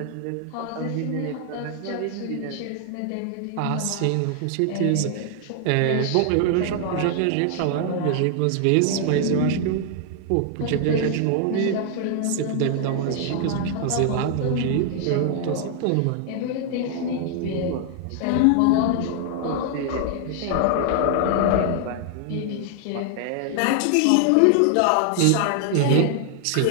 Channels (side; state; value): both; different; correlation 0.00